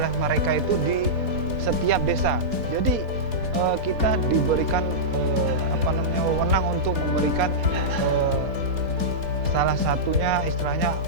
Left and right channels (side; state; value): left; late; 4.2 ms